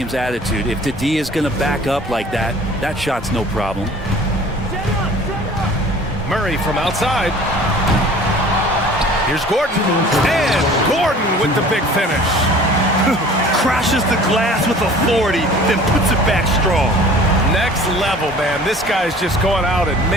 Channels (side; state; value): both; normal; correlation 0.47